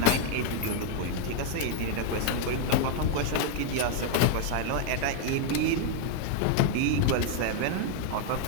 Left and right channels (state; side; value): different; both; correlation 0.00